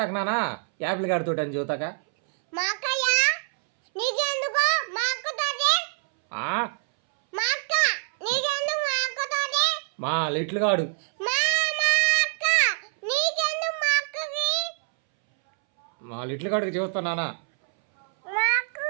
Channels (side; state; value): left; silent; 61 dB below the other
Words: నాన్న, యాపిల్ గడితో అని చెబుతాక మా లిటిల్ గాడు మా లిటిల్ గాడికి చెబుతా నాన్న.